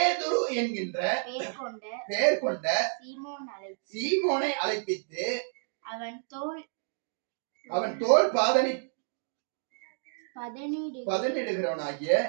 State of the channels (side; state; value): left; silent; digital silence